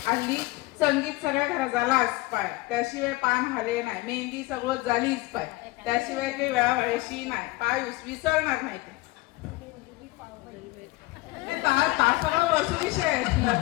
हल्ली संगीत सगळ्या घरात झालाच पाय त्याशिवाय पान हले नाही मेहंदी सगळं झालीच पाय त्याशिवाय काही वेळा व्हायची नाही पाय विसरणार नाही ते सगळं वस्तू विषय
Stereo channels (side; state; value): right; quieter; 21.0 dB